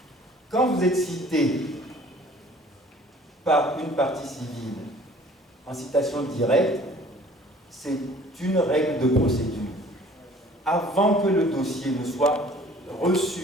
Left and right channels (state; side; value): normal; both; correlation 0.52